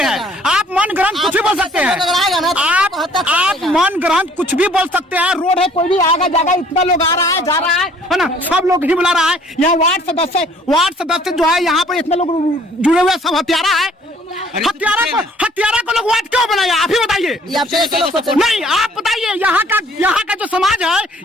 आप मन ग्रहण कुछ भी बोल सकते हैं। आप मन ग्रहण कुछ भी बोल सकते हैं। रोड है, कोई भी आएगा जाएगा, इतना लोग आ रहा है जा रहा है ना, सब लोग ही बुला रहा है। यहाँ वार्ड सदस्य जो है, यहाँ पर इतने लोग जुड़े हुए, सब हत्यारा है। हत्यारा को लोग वार्ड क्यों बनाया? आप ही बताइए। नहीं, आप बताइए। यहाँ का जो समाज है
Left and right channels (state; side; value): normal; both; correlation 0.57